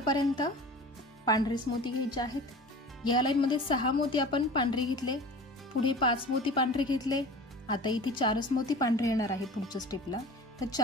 पांढरेच मोती घ्यायचे आहेत. या लाईन मध्ये 6 मोती आपण पांढरे घेतले, पुढे 5 मोती पांढरे घेतले. आता इथे 4 मोती पांढरे येणार आहे पुढच्या स्टेपला, तर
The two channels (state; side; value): normal; both; correlation 0.38